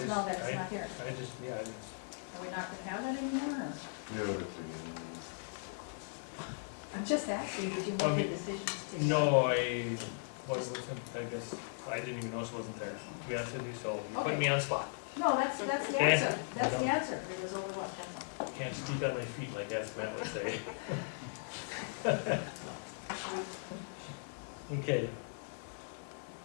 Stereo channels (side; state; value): right; silent; digital silence